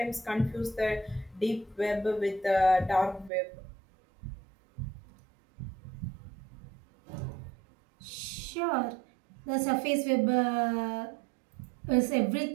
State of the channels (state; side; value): drops out; left; at 3.3 s